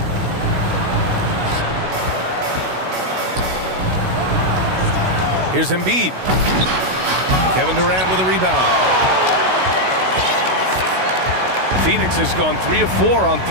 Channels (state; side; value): late; left; 16 ms